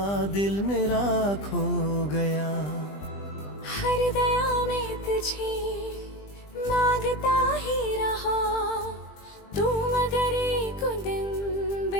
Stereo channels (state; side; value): late; right; 20 ms